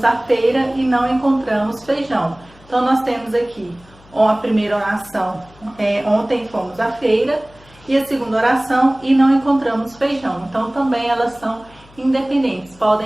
à feira e não encontramos feijão. Então, nós temos aqui a primeira oração, ontem fomos à feira, e a segunda oração, e não encontramos feijão. Então, também elas são independentes,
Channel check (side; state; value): left; noise; hum, 26 dB below the sound